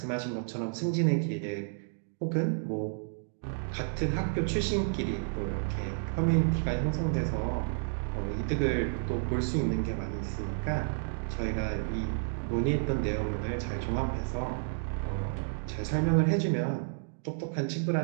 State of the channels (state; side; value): silent; left; digital silence